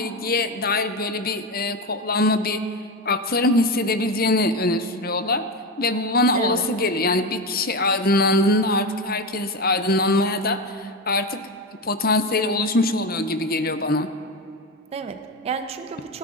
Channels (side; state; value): both; normal; correlation 0.17